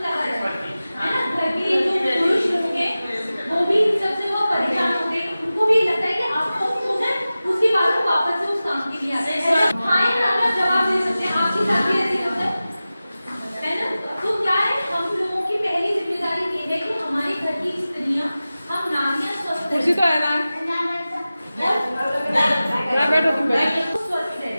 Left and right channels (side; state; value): both; inverted; correlation -0.96